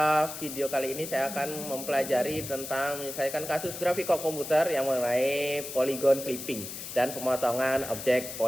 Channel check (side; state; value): left; noise; hiss, 9 dB below the sound